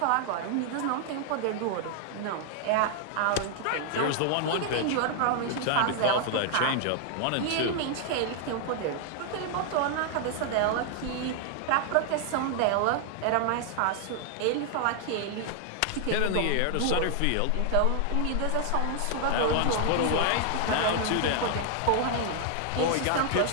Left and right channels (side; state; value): both; different; correlation 0.00